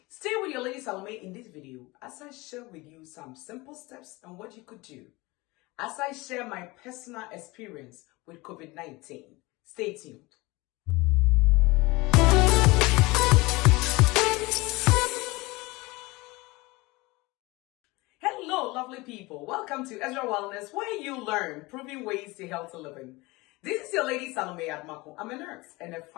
Stay with your Lady Salome in this video as I share with you some simple steps on what you could do as I share my personal experience with COVID-19. Stay tuned. Hello, lovely people. Welcome to Ezra Wellness, where you learn proven ways to healthy living. This is your Lady Salome Admako. I'm a nurse and a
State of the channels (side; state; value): right; quieter; 22.8 dB